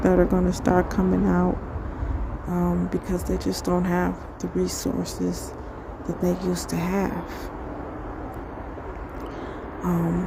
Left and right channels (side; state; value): both; identical; correlation 1.00